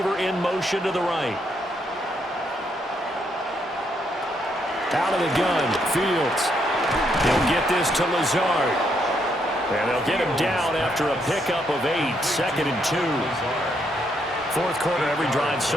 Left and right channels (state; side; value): normal; both; correlation 0.75